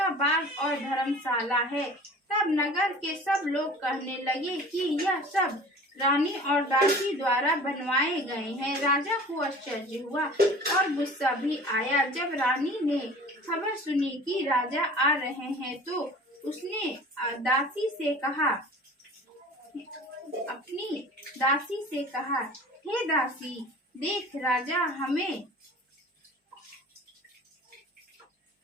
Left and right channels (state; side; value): normal; both; correlation 0.43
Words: बाग और धर्मशाला है। तब नगर के सब लोग कहने लगे कि यह सब रानी और दासी द्वारा बनवाए गए हैं। राजा को आश्चर्य हुआ और गुस्सा भी आया। जब रानी ने खबर सुनी कि राजा आ रहे हैं तो उसने अपनी दासी से कहा, हे दासी, देख